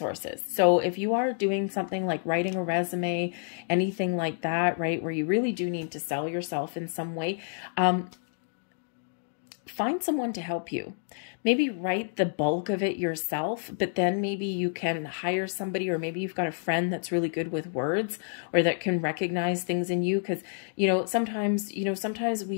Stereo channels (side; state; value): right; silent; digital silence